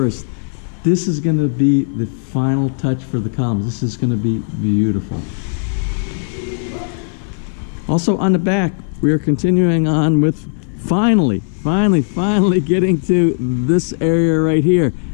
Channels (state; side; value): silent; right; 61 dB below the other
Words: This is going to be the final touch for the columns. This is going to be beautiful. Also on the back, we are continuing on with finally getting to this area right here.